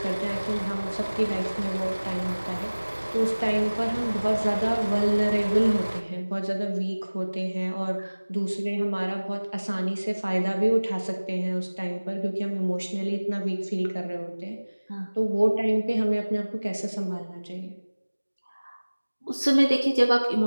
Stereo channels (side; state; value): both; inverted; correlation -1.00